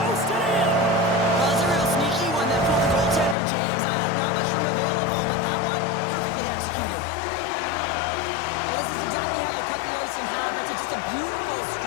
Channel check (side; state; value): right; drops out; at 3.4 s